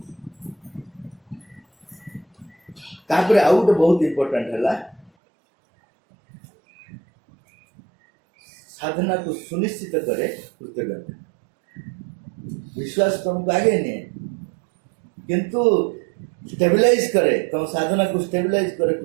तापर आउ गोटे बहुत इम्पोर्टाट है साधना को सुनिश्चित करे कृतज्ञता। विश्वास तुमको आगे नहीं किंतु स्टेबलाइज करे तुम साधना को स्टेबलाइज करे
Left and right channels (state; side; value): drops out; left; at 5.1 s